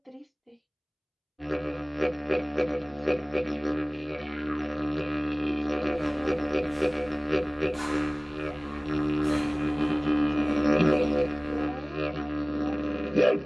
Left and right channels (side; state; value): both; identical; correlation 1.00